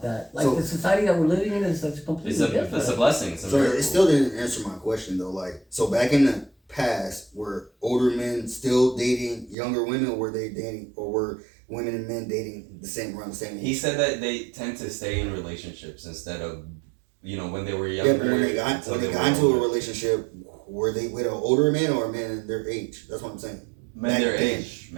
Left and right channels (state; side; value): drops out; left; at 9.6 s